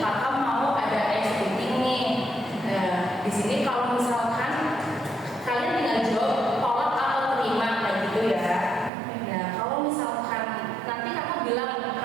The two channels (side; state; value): left; drops out; at 8.9 s